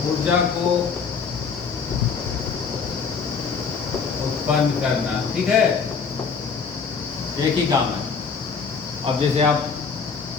को उत्पन्न करना। ठीक है, एक ही काम है। अब जैसे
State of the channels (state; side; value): quieter; right; 5.6 dB